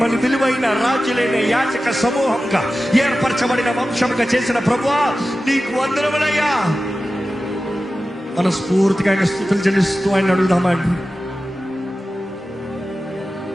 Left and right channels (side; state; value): both; normal; correlation 0.94